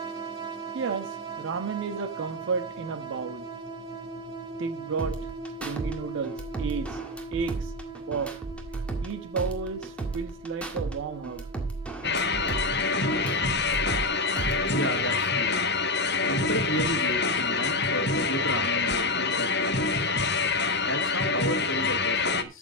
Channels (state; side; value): normal; both; correlation 0.10